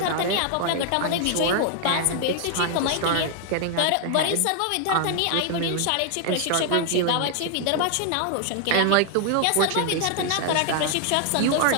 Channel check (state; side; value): different; both; correlation 0.00